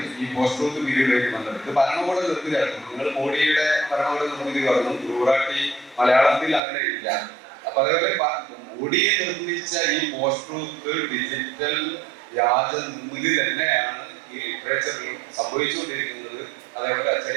ഈ പോസ്റ്റ് ട്രൂത്ത് പീരീഡിലേക്ക് വന്നത്. ഇത് ഭരണകൂട നിർമ്മിതിയായിരുന്നു. നിങ്ങൾ മോഡിയുടെ ഭരണകൂട നിർമ്മിതി പറഞ്ഞു, ഗുറാട്ടി മലയാളത്തിൽ അങ്ങനെ ഇല്ല. അപ്പൊ അതേപോലെ മോഡിയെ നിർമ്മിച്ച ഈ പോസ്റ്റ് ട്രൂത്ത് ഡിജിറ്റൽ വ്യാജ നിർമ്മിതി തന്നെയാണ് ഈ ലിറ്ററേച്ചറിലും സംഭവിച്ചുകൊണ്ടിരിക്കുന്നത്. അതേപോലെ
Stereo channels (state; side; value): drops out; left; at 6.6 s